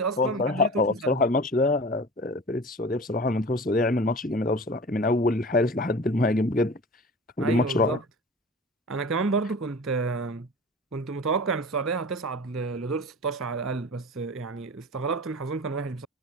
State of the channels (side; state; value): both; normal; correlation 0.37